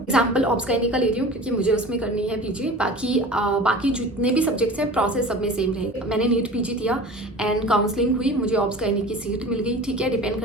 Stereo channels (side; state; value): both; normal; correlation 0.38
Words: ऑब्सकाइनी का ले रही हूँ क्योंकि मुझे उसमें करनी है पीजी। बाकी जितने भी सब्जेक्ट्स हैं प्रोसेस सब में सेम रहेगा। मैंने नीट पीजी दिया एंड काउंसलिंग हुई, मुझे ऑब्सकाइनी की सीट मिल गई, ठीक है। डिपेंड